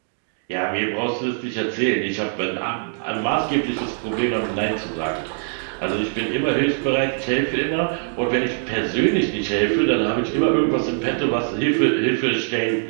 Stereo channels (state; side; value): silent; left; digital silence